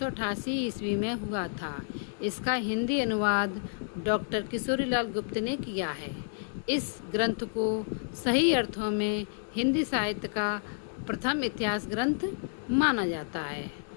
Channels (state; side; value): silent; right; digital silence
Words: ईस्वी में हुआ था। इसका हिंदी अनुवाद डॉक्टर किशोरीलाल गुप्त ने किया है। इस ग्रंथ को सही अर्थों में हिंदी साहित्य का प्रथम इतिहास ग्रंथ माना जाता है।